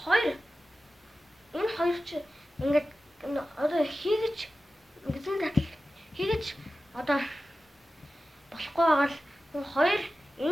хоёр чи ингээд одоо хийгэж гэцэн татал хийгэж одоо болохгүй байгаа л хоёр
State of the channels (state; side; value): normal; both; correlation 0.94